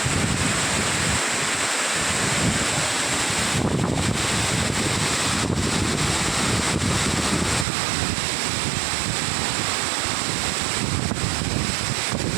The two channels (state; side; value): drops out; left; at 7.7 s